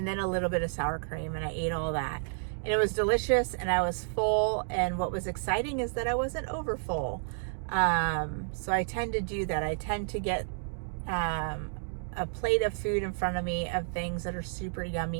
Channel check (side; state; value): left; silent; digital silence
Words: then a little bit of sour cream, and I ate all that. And it was delicious, and I was full, and what was exciting is that I wasn't over full. So I tend to do that. I tend to get a plate of food in front of me of things that are super